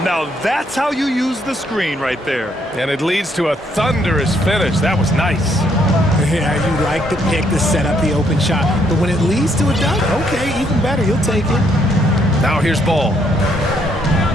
Now that's how you use the screen right there. And it leads to a thunderous finish. That was nice. Yeah, you like the pick to set up the open shot, but when it leads to a dunk, okay, even better, you'll take it. Now here's Ball.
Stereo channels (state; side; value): normal; both; correlation 0.71